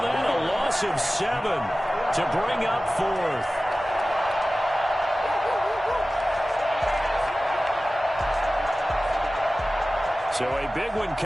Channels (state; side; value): normal; both; correlation 0.96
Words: that a loss of 7 to bring up 4th. So a big one